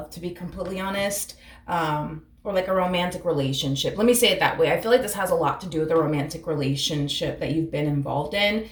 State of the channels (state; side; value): identical; both; correlation 1.00